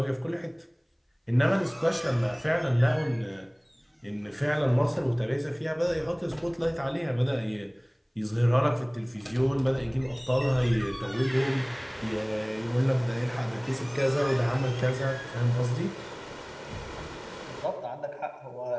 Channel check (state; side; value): identical; both; correlation 1.00